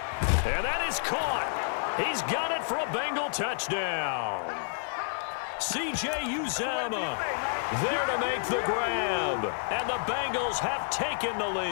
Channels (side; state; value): right; silent; 58 dB below the other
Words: And that is caught. He's got it for a Bengal touchdown. C.J. Uzomah there to make the grab. And the Bengals have taken the